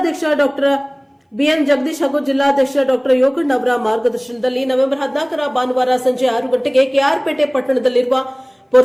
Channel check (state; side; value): identical; both; correlation 1.00